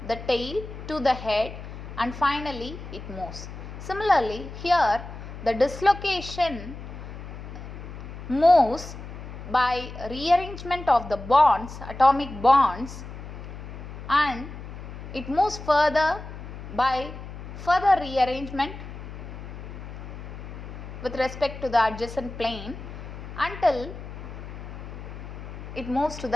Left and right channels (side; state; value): left; noise; hum, 11 dB below the sound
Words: the tail to the head and finally it moves. Similarly, here the dislocation moves by rearrangement of the bonds, atomic bonds, and it moves further by further rearrangement with respect to the adjacent plane until it moves to